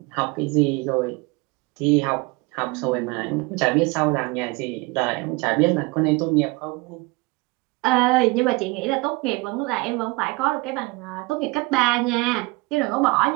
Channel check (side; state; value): left; quieter; 25.2 dB